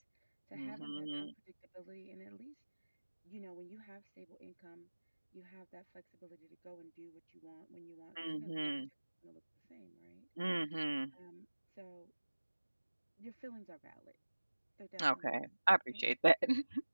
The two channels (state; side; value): inverted; both; correlation -1.00